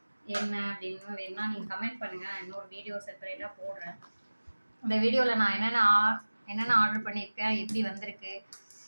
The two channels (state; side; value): inverted; both; correlation -1.00